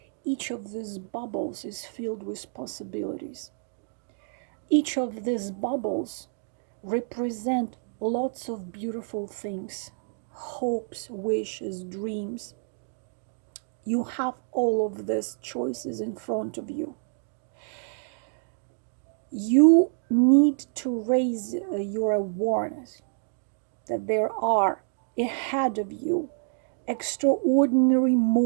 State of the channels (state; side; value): silent; left; digital silence